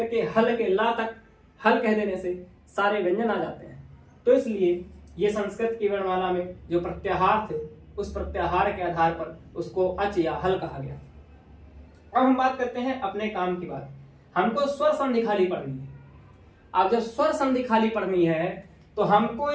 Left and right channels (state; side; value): identical; both; correlation 1.00